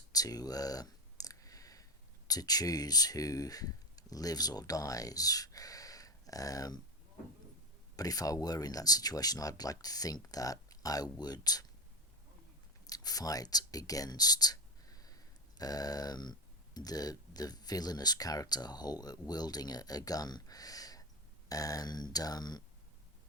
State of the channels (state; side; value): normal; both; correlation 0.15